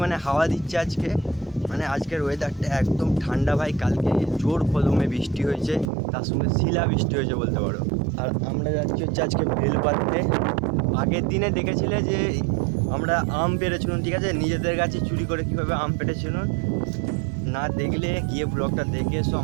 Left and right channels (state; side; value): drops out; left; at 5.9 s